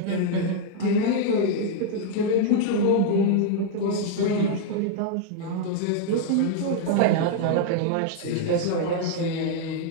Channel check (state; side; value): different; both; correlation 0.00